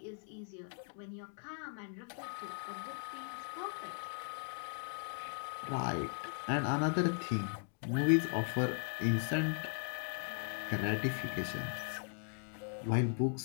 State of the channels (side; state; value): right; silent; 52 dB below the other